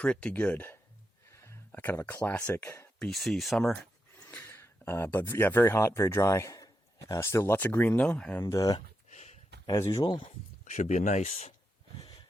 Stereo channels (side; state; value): both; normal; correlation 0.85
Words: good. Kind of a classic BC summer. But yeah, very hot, very dry. Still lots of green though, and as usual, should be a nice